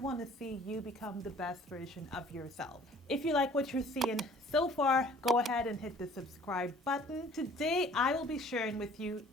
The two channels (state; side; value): normal; both; correlation 0.53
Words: to see you become the best version of yourself. If you like what you're seeing so far, go ahead and hit the subscribe button. Today, I will be sharing with you